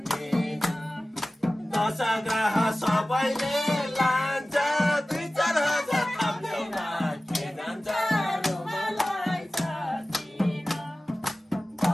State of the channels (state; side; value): normal; both; correlation 0.96